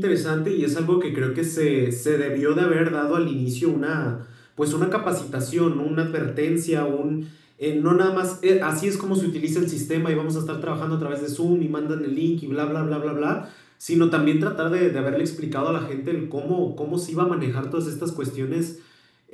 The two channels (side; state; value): both; identical; correlation 1.00